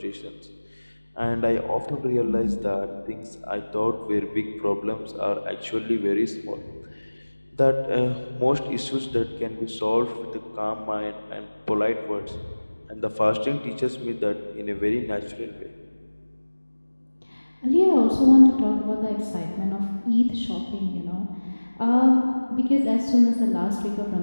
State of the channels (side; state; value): both; inverted; correlation -1.00